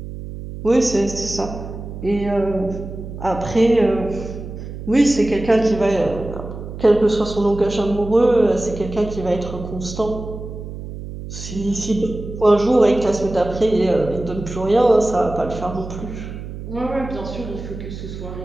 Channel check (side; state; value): right; noise; hum, 10 dB below the sound